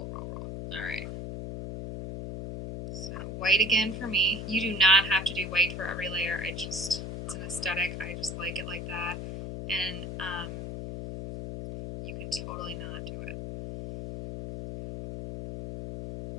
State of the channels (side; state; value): left; noise; hum, 6 dB below the sound